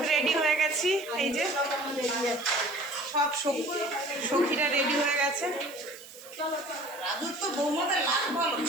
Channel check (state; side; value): noise; right; hiss, 18 dB below the sound